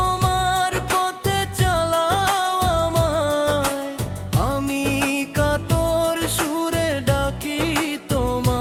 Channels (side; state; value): both; identical; correlation 1.00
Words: পথে চালাও আমায়, আমি কাতর সুরে ডাকি